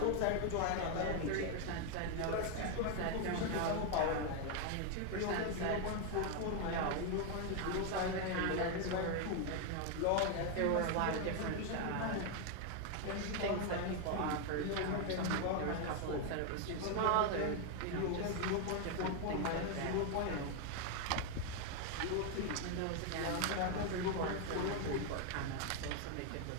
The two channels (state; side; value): different; both; correlation 0.01